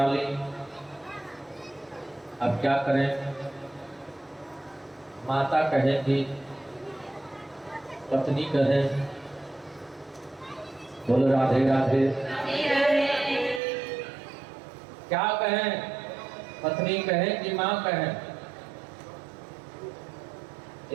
ली, अब क्या करें? माता कहे कि पत्नी कहे। बोलो राधे राधे। क्या कहें? पत्नी कहे कि माँ कहे?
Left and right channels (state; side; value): drops out; left; at 13.6 s